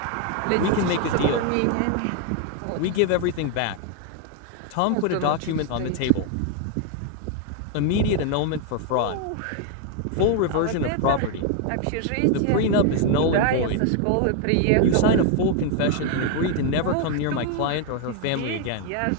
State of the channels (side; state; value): both; different; correlation 0.01